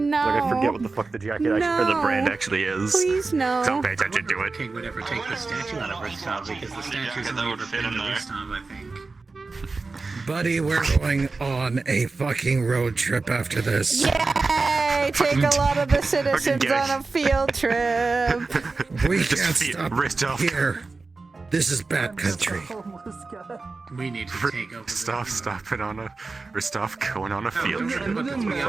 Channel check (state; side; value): quieter; left; 3.9 dB